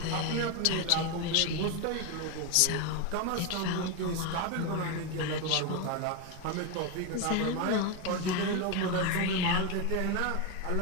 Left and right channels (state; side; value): different; both; correlation 0.02